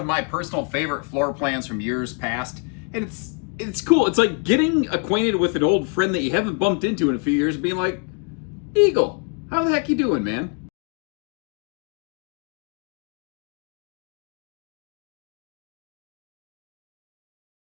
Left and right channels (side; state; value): right; quieter; 37.4 dB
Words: my personal favorite floor plans from years past, and it's cool. It's like getting acquainted with an old friend that you haven't bumped into in a few years, and being like, "Eagle, how the heck you doing, man?"